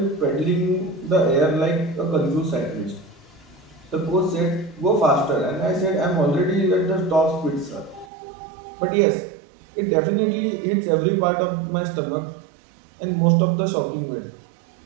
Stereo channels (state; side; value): drops out; left; at 8.1 s